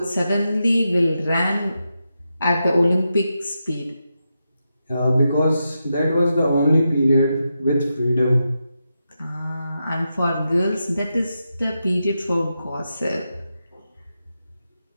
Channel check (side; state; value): both; inverted; correlation -0.88